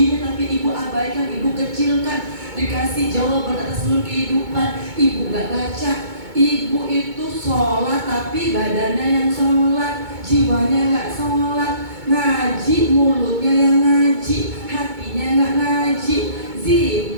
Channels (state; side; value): late; left; 2.2 ms